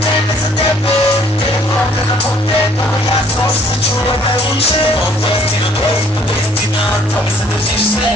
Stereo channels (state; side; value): normal; both; correlation 0.60